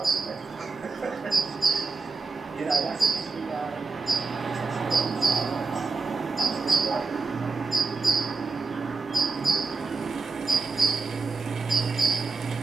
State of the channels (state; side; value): quieter; left; 4.2 dB